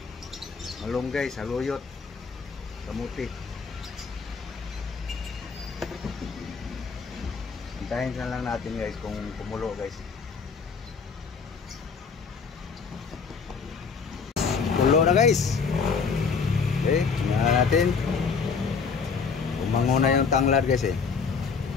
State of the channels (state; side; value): quieter; right; 5.5 dB